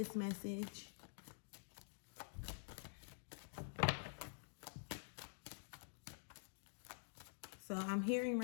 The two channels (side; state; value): right; silent; digital silence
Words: message. So I'm hearing